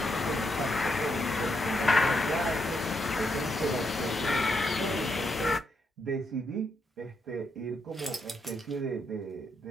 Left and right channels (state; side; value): normal; both; correlation 0.79